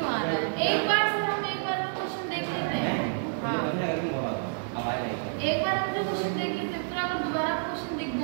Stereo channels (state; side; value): silent; left; digital silence